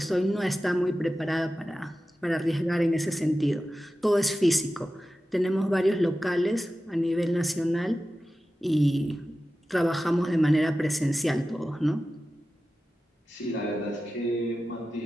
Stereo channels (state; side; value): normal; both; correlation 0.94